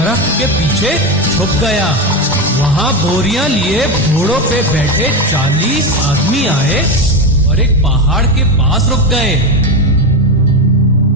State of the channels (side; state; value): both; normal; correlation 0.15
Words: के पीछे छुप गया। वहां बोरियां लिए घोड़ों पे बैठे 40 आदमी आए और एक पहाड़ के पास रुक गए।